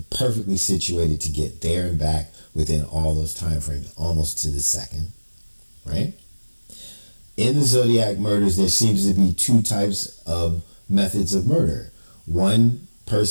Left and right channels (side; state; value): both; inverted; correlation -1.00